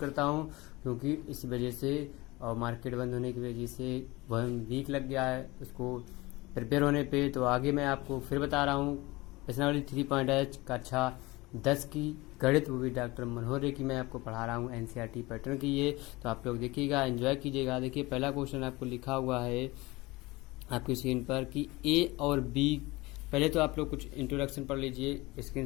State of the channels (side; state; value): right; quieter; 21.9 dB